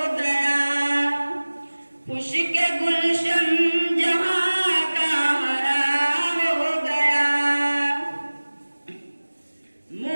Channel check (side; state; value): both; inverted; correlation -1.00